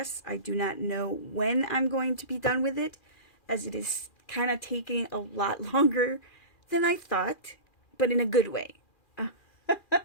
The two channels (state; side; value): late; right; 2.4 ms